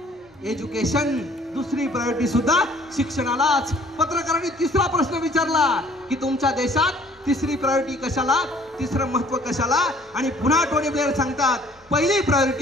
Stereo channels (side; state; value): both; normal; correlation 0.56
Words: education. दुसरी प्रायोरिटी सुद्धा शिक्षणालाच. पत्रकारांनी तिसरा प्रश्न विचारला की तुमच्या देशात तिसरी प्रायोरिटी कशाला, तिसरं महत्व कशाला? आणि पुन्हा टोनी ब्लेअर सांगतात, पहिली